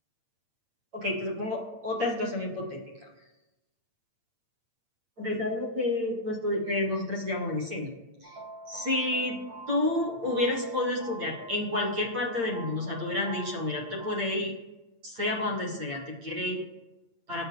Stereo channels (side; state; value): left; late; 8.7 ms